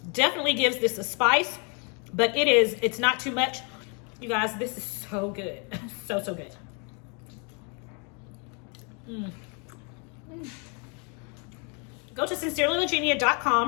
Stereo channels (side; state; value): right; quieter; 35.7 dB